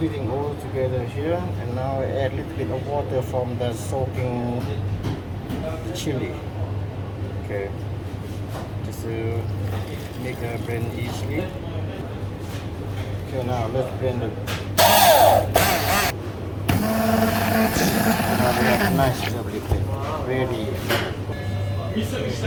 all together here, and now I add a little bit of water from the soaking chili. Okay, just to make a blend easily. Okay, now let's blend it. Now we have nice lovely paste. Ready.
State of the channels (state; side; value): identical; both; correlation 1.00